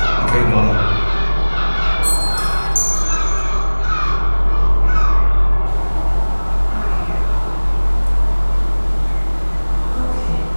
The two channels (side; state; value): both; inverted; correlation -1.00